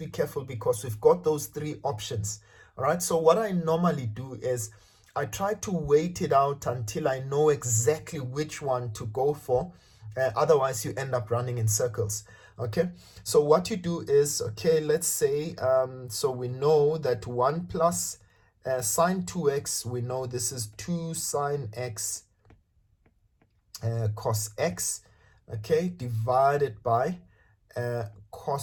careful because we've got those 3 options. All right, so what I normally do is I try to wait it out until I know exactly which one to go for. Otherwise, you end up running in circles. Okay, so what you do is, let's say, so we know that 1 plus sine 2x, we know this is 2 sine x cos x, divided by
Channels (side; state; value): both; identical; correlation 1.00